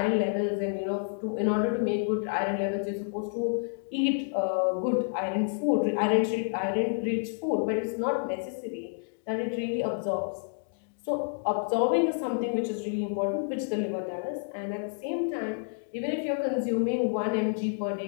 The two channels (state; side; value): silent; right; digital silence